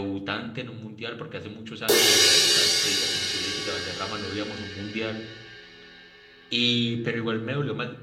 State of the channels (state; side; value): identical; both; correlation 1.00